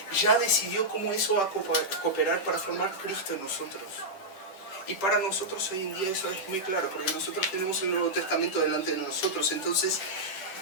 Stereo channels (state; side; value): late; right; 10 ms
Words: ya decidió cómo eso va a cooperar para formar Cristo en nosotros. Y para nosotros hoy en día eso es muy claro, porque nosotros tenemos el Nuevo Testamento delante de nosotros. Entonces